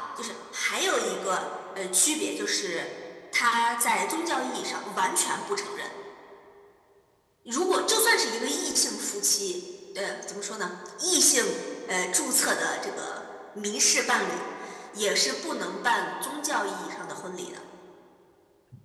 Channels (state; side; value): identical; both; correlation 1.00